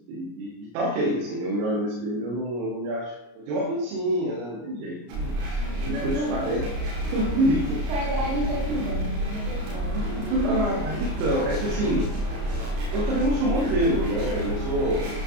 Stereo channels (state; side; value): late; left; 33 ms